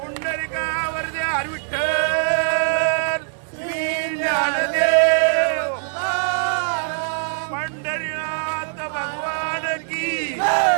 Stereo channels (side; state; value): left; silent; digital silence